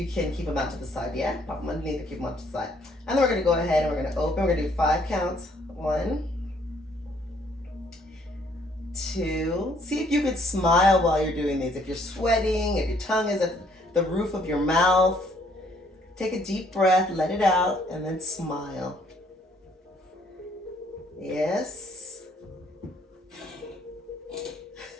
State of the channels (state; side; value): normal; both; correlation 0.65